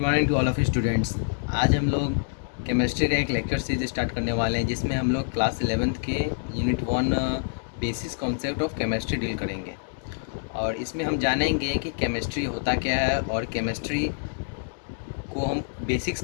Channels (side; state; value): right; silent; digital silence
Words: to all of students. आज हम लोग केमिस्ट्री का एक लेक्चर सीरीज स्टार्ट करने वाले हैं जिसमें हम लोग क्लास 11th के unit 1 basis concept of chemistry deal करेंगे। और इसमें हम जानेंगे कि केमिस्ट्री होता क्या है और केमिस्ट्री को हम बेसिक्स